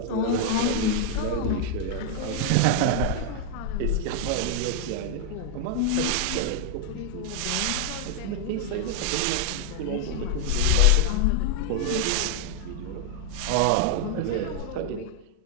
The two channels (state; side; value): different; both; correlation 0.00